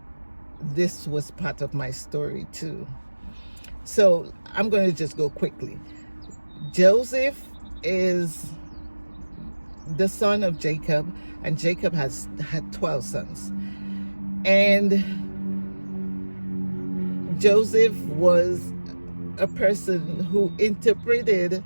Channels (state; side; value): inverted; both; correlation -1.00